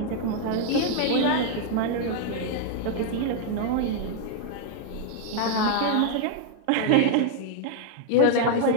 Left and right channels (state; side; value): different; both; correlation 0.00